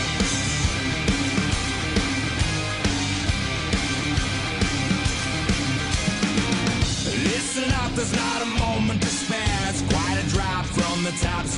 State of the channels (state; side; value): identical; both; correlation 1.00